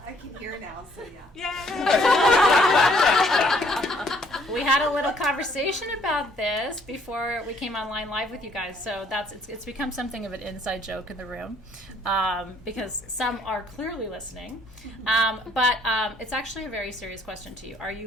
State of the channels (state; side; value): normal; both; correlation 0.64